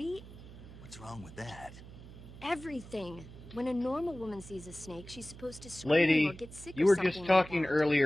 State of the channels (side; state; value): right; noise; hum, 16 dB below the sound